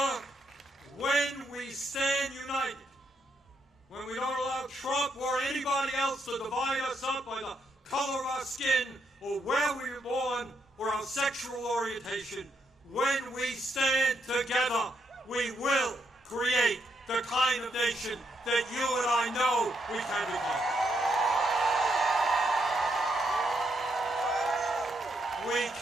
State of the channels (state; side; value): normal; both; correlation 0.77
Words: when we stand united, when we don't allow Trump or anybody else to divide us up by the color of our skin or where we were born or our sexual orientation, when we stand together, we will create the kind of nation that you and I know we can become. We